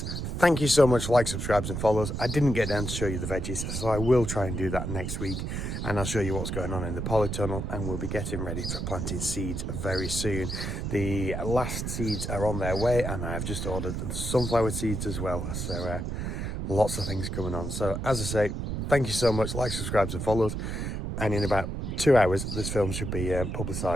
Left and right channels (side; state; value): right; noise; rumble, 3 dB below the sound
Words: thank you so much for like, subscribes and follows. I didn't get down to show you the veggies, so I will try and do that next week. And I'll show you what's going on in the polytunnel, and we'll be getting ready for planting seeds very soon. The last seeds are on their way, and I've just ordered sunflower seeds as well. So lots of things coming on. So as I say, thank you so much. Like, subscribes and follows. And in about 2 hours, this film should be